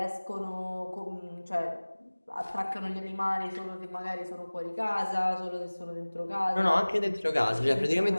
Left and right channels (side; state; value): both; inverted; correlation -1.00